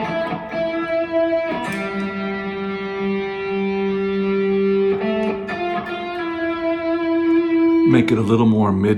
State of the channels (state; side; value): identical; both; correlation 1.00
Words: Make it a little more